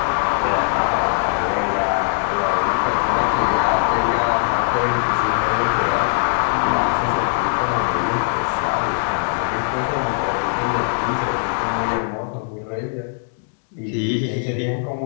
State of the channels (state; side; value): silent; right; digital silence